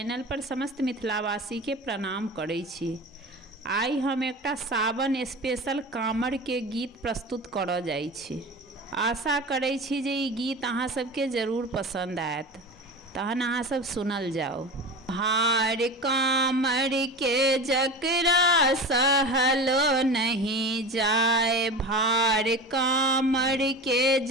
पर समस्त मिथिलावासी के प्रणाम करै छी। आई हम एकटा सावन स्पेशल कांवड़ के गीत प्रस्तुत करऽ जाइ छी। आशा करै छी जे ई गीत अहाँ सबके जरूर पसंद आयत। तहन अहाँ सब सुनल जाओ। भार कांवड़ के जकरा सहलो नहीं जाए, भार कांवड़ के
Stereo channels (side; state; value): both; normal; correlation 0.31